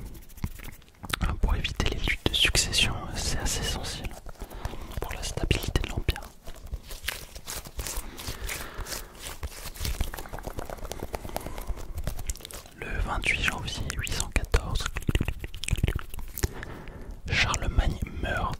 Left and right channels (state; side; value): identical; both; correlation 1.00